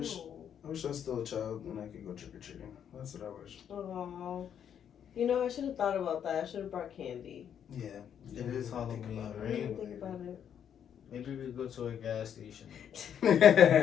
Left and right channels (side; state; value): right; quieter; 8.8 dB